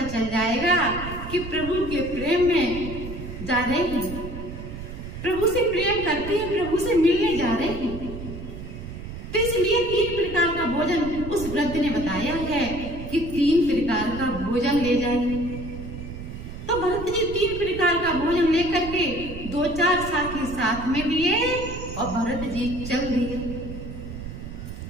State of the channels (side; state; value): right; noise; rumble, 9 dB below the sound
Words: चल जाएगा कि प्रभु के प्रेम में जा रहे हैं, प्रभु से प्रेम करते हैं, प्रभु से मिलने जा रहे हैं। तो इसलिए 3 प्रकार का भोजन उस वृद्ध ने बताया है कि 3 प्रकार का भोजन ले जाइए। तो भरत जी 3 प्रकार का भोजन लेकर के 2-4 साथी साथ में लिए और भरत जी चल दिए।